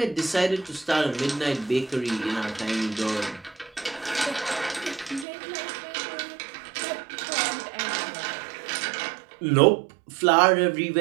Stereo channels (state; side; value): drops out; left; at 5.2 s